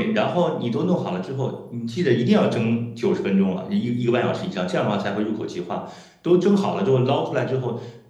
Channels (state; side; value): identical; both; correlation 1.00